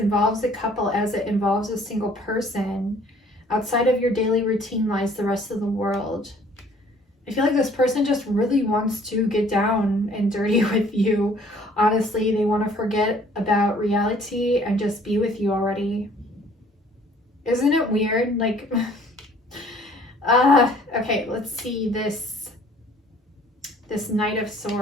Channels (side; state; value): both; normal; correlation 0.56